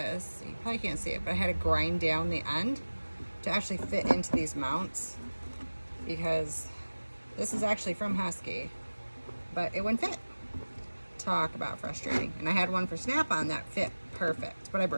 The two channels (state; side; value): inverted; both; correlation -1.00